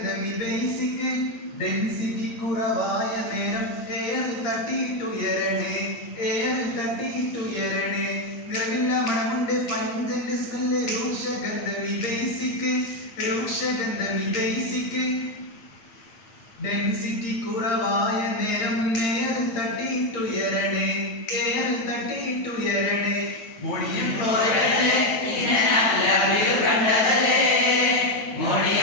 ഡെൻസിറ്റി കുറവായ നേരം എയറിൽ തട്ടിയിട്ടുയരണേ. നിറമില്ല, മണമുണ്ട്, പഞ്ചന്റെ സ്മെല്ല്, രൂക്ഷഗന്ധമി ബേസിക്. ഡെൻസിറ്റി കുറവായ നേരം എയറിൽ തട്ടിയിട്ടുയരണേ, എയറിൽ തട്ടിയിട്ടുയരണേ. അമോണിയം ക്ലോറൈഡ് നിന്നെ ഞാൻ ലാബിൽ കണ്ടതല്ലേ,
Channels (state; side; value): late; right; 8.8 ms